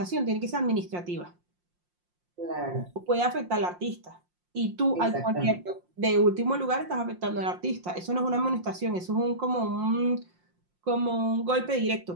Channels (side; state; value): left; late; 5.6 ms